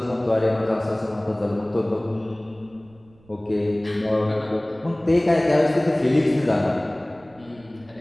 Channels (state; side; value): noise; right; rumble, 28 dB below the sound